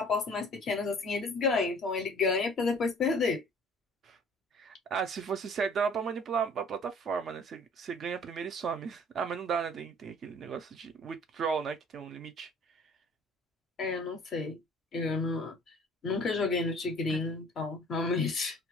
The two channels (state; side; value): normal; both; correlation 0.51